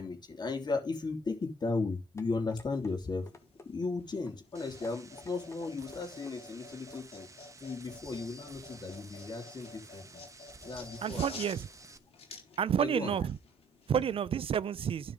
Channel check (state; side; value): normal; both; correlation 0.62